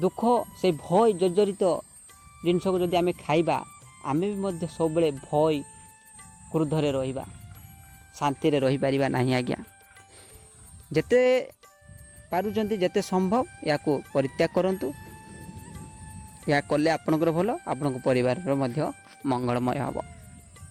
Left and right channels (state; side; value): identical; both; correlation 1.00